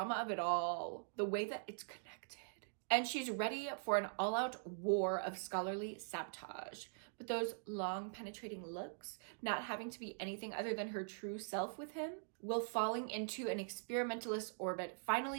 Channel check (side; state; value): left; silent; digital silence